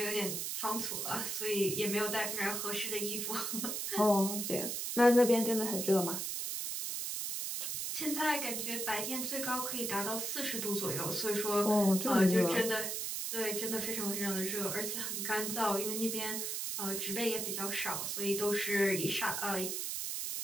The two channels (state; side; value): noise; right; hiss, 2 dB below the sound